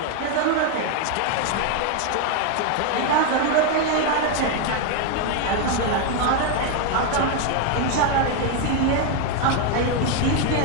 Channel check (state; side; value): different; both; correlation 0.01